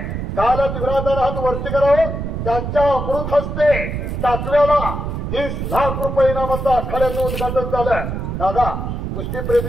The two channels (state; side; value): noise; right; rumble, 4 dB below the sound